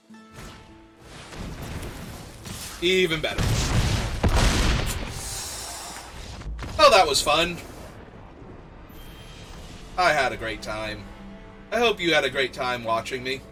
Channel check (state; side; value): identical; both; correlation 1.00